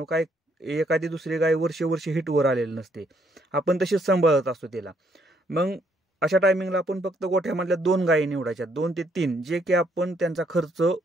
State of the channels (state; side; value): normal; both; correlation 0.70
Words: काय एखादी दुसरी गाय वर्षे हिटवर आलेली नसते. आपण तशीच सांभाळत असतो तिला. मग अशा टायमिंगला आपण फक्त गोठ्यामधल्या 2 गायी निवडायच्या, 2 ते 3, जे की आपण त्यांचा खर्च